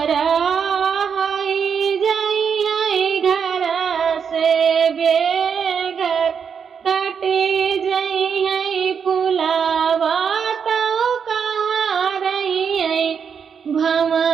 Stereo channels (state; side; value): quieter; left; 6.8 dB